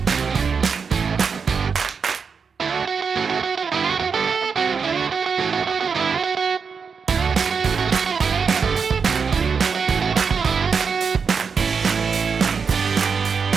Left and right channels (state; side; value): quieter; left; 5.7 dB